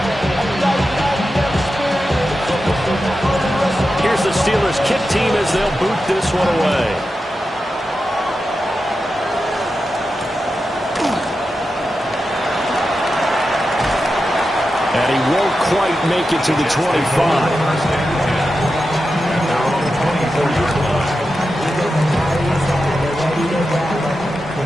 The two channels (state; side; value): normal; both; correlation 0.90